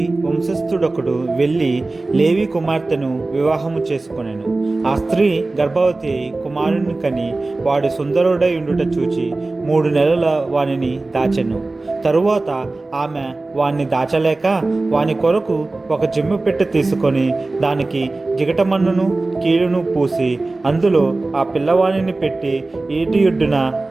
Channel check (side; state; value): left; quieter; 3.2 dB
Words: వంశస్థుడొకడు వెళ్ళి లేవి కుమార్తెను వివాహము చేసుకొనెను. ఆ స్త్రీ గర్భవతి అయి కుమారుని కని వాడు సుందరుడై ఉండుట చూచి 3 నెలల వానిని దాచెను. తరువాత ఆమె వాణ్ణి దాచలేక వాని కొరకు ఒక జిమ్ము పెట్టె తీసుకొని దానికి జిగటమన్నును కీలును పూసి అందులో ఆ పిల్లవానిని పెట్టి ఈటియుడ్డున